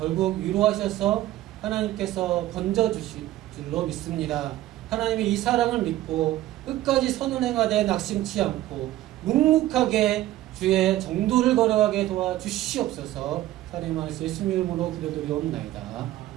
위로하셔서 하나님께서 건져주실 줄로 믿습니다. 하나님의 이 사랑을 믿고 끝까지 선을 행하되 낙심치 않고 묵묵하게 주의 정도를 걸어가게 도와주시옵소서. 하나님 말씀 예수님 이름으로 기도드리옵나이다.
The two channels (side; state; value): left; quieter; 14.9 dB